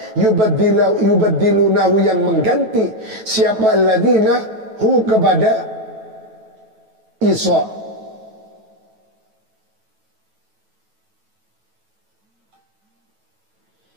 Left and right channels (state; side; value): late; left; 9.2 ms